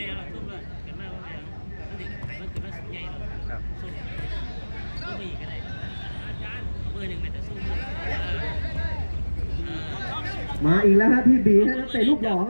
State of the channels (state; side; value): inverted; both; correlation -1.00